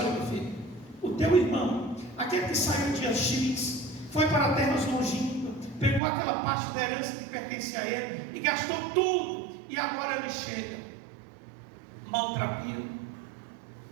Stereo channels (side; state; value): left; drops out; at 6.0 s